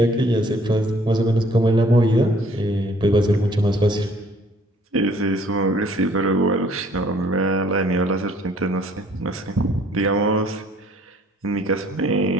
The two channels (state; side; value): normal; both; correlation 0.58